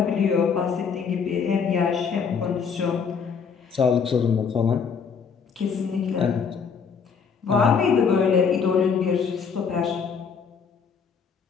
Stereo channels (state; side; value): quieter; right; 6.2 dB